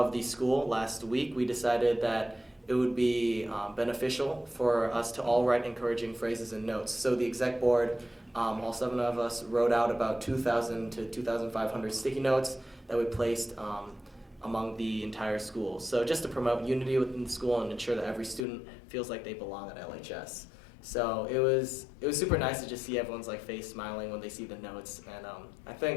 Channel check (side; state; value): right; drops out; at 18.4 s